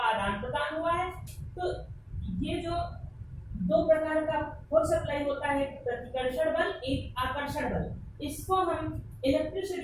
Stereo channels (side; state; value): both; identical; correlation 1.00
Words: आदान प्रदान हुआ है। तो ये जो दो प्रकार का फोर्स अप्लाई होता है, प्रतिकर्षण बल, एक आकर्षण बल, इसको हम